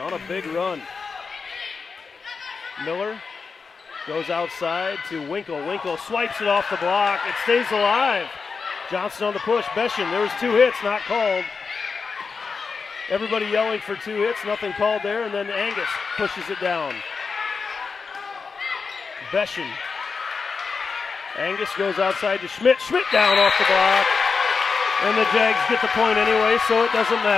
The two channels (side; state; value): right; quieter; 5.0 dB